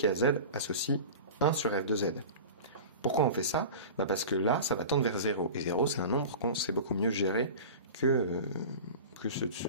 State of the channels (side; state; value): both; inverted; correlation -0.33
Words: a z associe 1 sur f de z. Pourquoi on fait ça? Parce que là, ça va tendre vers 0. Et 0, c'est un nombre qu'on sait beaucoup mieux gérer que